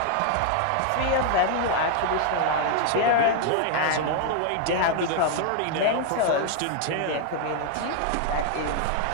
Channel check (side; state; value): both; different; correlation 0.00